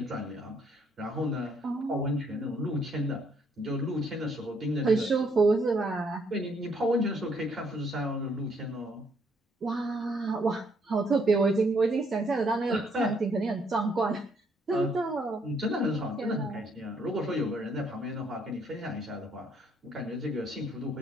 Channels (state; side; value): normal; both; correlation 0.69